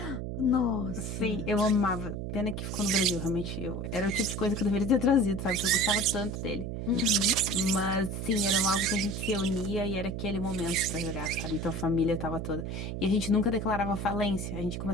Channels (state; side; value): noise; right; hum, 5 dB below the sound